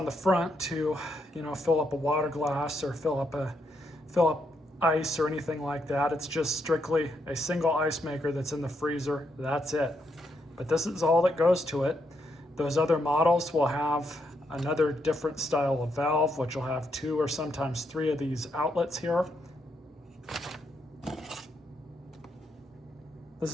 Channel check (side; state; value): both; normal; correlation 0.79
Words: the front to, fill up a water glass or fill up ice or anything like that. It's just strictly a single ice maker that's in the freezer. That's it. But this is all that goes to it. Those other models will have another different style of valve, which will have 2 or sometimes 3 of these outlets here. This